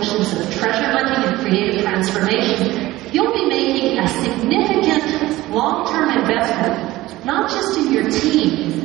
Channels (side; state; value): left; quieter; 17.5 dB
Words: of treasure hunting and creative transformation, you'll be making a significant long-term investment, not just in your